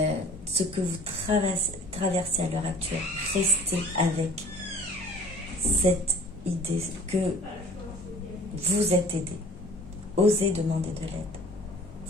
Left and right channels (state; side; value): normal; both; correlation 0.49